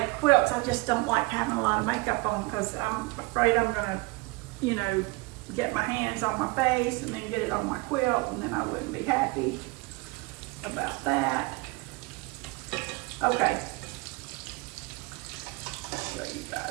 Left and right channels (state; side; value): quieter; left; 24.7 dB